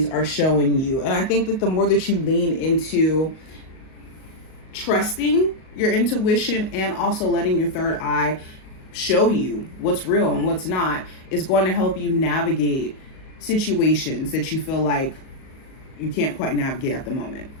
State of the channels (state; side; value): late; right; 38 ms